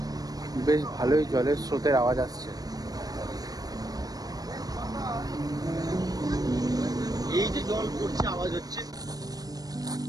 বেশ ভালোই জলের স্রোতের আওয়াজ আসছে। এই যে জল পড়ছে, আওয়াজ হচ্ছে।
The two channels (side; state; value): left; late; 0.18 ms